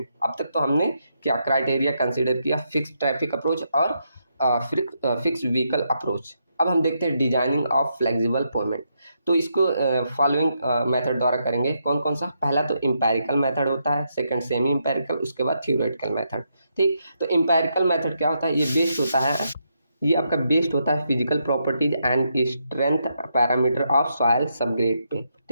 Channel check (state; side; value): inverted; both; correlation -0.80